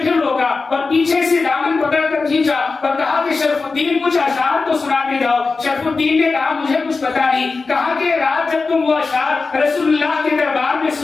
پھر روکا اور پیچھے سے دامن پکڑ کر کھینچا اور کہا کہ شرف الدین کچھ اشعار تو سنا کے جاؤ۔ شرف الدین نے کہا مجھے کچھ پتا نہیں۔ کہا کہ رات جب تم وہ اشعار رسول اللہ کے دربار میں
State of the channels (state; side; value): quieter; right; 4.1 dB